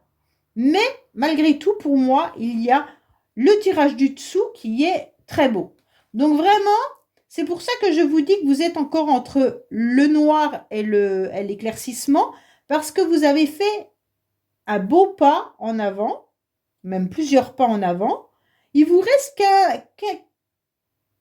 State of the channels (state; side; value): identical; both; correlation 1.00